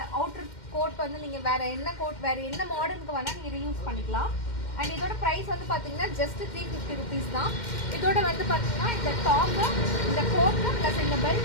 அவுட்டர் கோட் வந்து நீங்கள் வேறு என்ன கோட் வேறு என்ன மாடலுக்கு வேணால் நீங்கள் ரீயூஸ் பண்ணிக்கலாம். அண்ட் இதோட ப்ரைஸ் வந்து பார்த்தீங்கன்னா ஜஸ்ட் 350 ருபீஸ் தான். இதோட வந்து பார்த்தீங்கன்னா இந்த டாப்பு, இந்த கோட்டு ப்ளஸ் இந்த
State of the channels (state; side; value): late; right; 2.1 ms